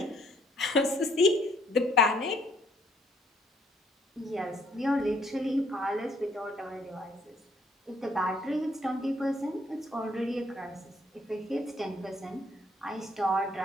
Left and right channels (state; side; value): normal; both; correlation 0.66